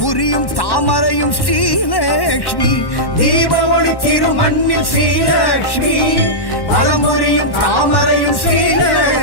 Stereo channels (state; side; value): late; right; 1.1 ms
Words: தாமரையும் ஸ்ரீலக்ஷ்மி தீப ஒளி திருமண்ணில் ஸ்ரீலக்ஷ்மி வலம் புரியும் தாமரையும்